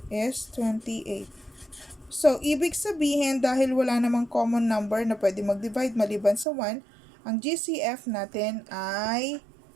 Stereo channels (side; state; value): left; drops out; at 6.5 s